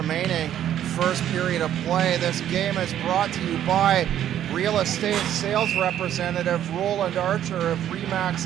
first period of play. This game is brought to you by real estate sales representative Roland Archer of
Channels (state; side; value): quieter; left; 11.0 dB